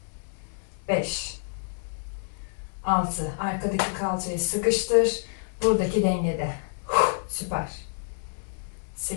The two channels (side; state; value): right; silent; digital silence